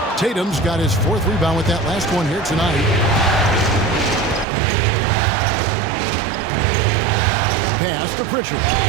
Tatum's got his 4th rebound with that last one here tonight. Pass to Pritchard.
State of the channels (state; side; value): drops out; left; at 4.5 s